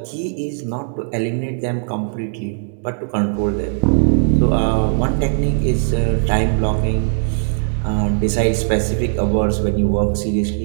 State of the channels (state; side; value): silent; left; digital silence